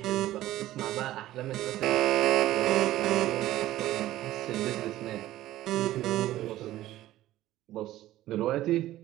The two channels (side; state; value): left; quieter; 14.8 dB